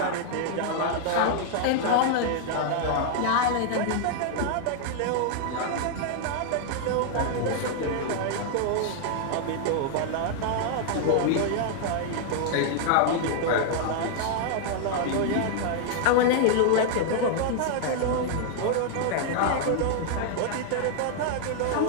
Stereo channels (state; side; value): different; both; correlation 0.00